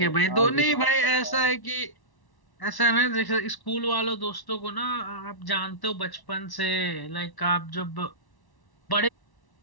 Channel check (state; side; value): late; right; 1.1 ms